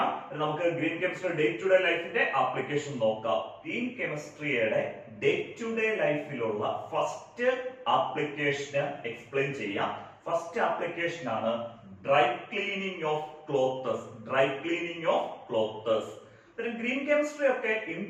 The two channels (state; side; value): identical; both; correlation 1.00